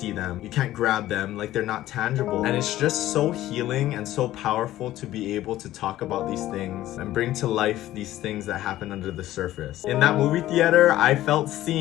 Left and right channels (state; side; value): quieter; right; 14.5 dB